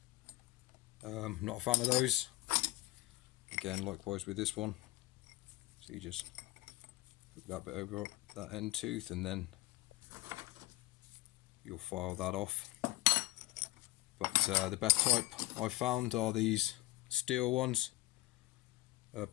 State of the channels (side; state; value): right; quieter; 19.3 dB